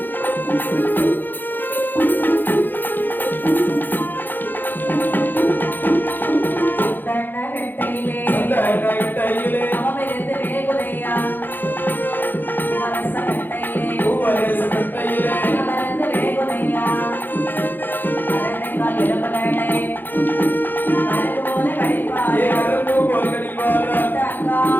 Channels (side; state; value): right; late; 0.091 ms